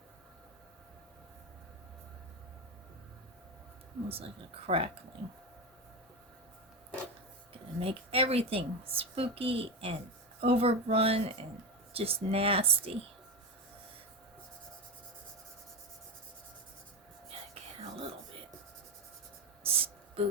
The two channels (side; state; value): both; normal; correlation 0.16